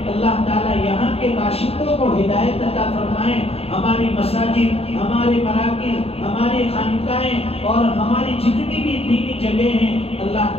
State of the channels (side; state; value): right; late; 0.29 ms